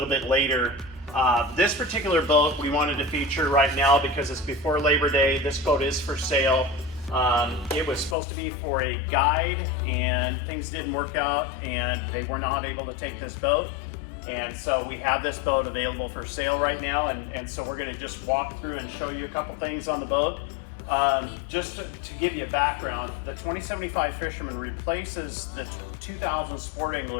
bit later. This particular boat we wanted to feature right now because it's before Labor Day. This boat is for sale. It was supposed to be for a guide, and things didn't work out, and they were not able to take this boat. And so we have this boat available for sale right now, and so we're going to just walk through and show you a couple things on the boat. Just to give you a background, the 2075 Fisherman replaces the 2000 Sport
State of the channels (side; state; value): right; drops out; at 8.2 s